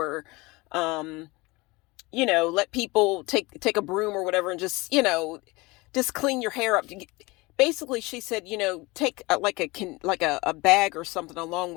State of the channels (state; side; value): quieter; right; 23.4 dB